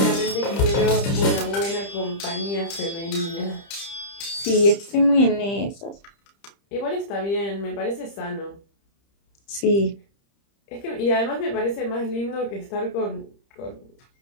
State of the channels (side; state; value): right; late; 30 ms